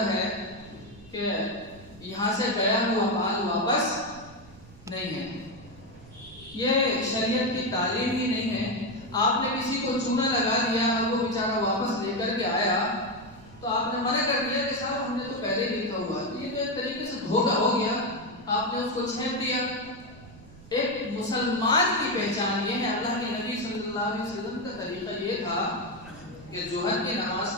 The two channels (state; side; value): noise; right; rumble, 20 dB below the sound